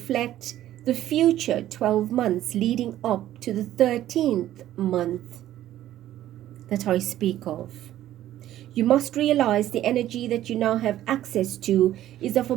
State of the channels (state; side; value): quieter; left; 13.1 dB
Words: the future 12 months leading up to the 13th month that I speak of. You must realize the energy that you now have access to is of a